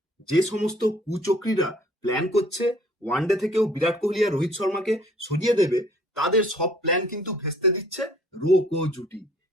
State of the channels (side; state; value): both; normal; correlation 0.57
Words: যে সমস্ত কুচক্রীরা প্ল্যান করছে ওয়ানডে থেকেও বিরাট কোহলি আর রোহিত শর্মাকে সরিয়ে দেবে, তাদের সব প্ল্যান কিন্তু ভেস্তে দিচ্ছে রো জুটি।